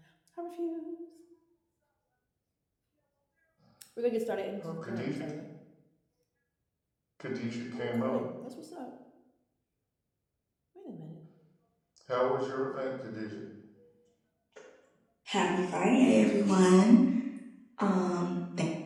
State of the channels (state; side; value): identical; both; correlation 1.00